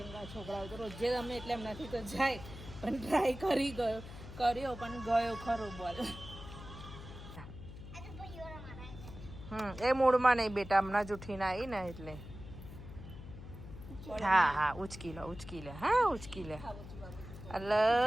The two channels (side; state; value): left; noise; hum, 13 dB below the sound